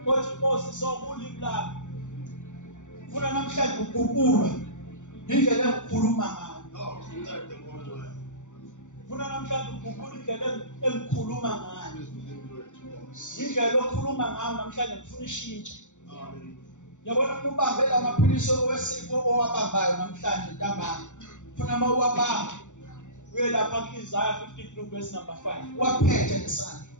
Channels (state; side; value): late; right; 0.85 ms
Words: othi Nkosi sokulimi lami. Ufuna namhlanje ukukhuluma indlela engikhuluma ngayo. Ufuna namhlanje ukukhuluma indlela engikhuluma ngayo. Indlela okhuluma ngayo namhlanje ngifuna ishintshe. Yabona ubambe lamaphilisi owesifo owabambayo namhlanje ntambama. Ufuna mawuwabamba uye lapha ku-Isaiah 53 verse number 5. Waphethe ngesandla.